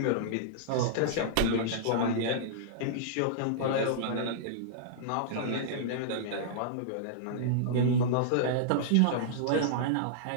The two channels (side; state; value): both; different; correlation -0.02